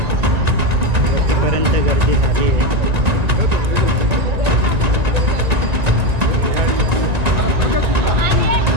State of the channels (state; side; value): late; left; 1.9 ms